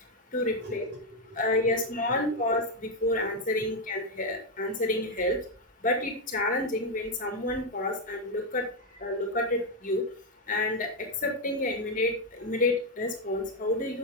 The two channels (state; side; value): normal; both; correlation 0.04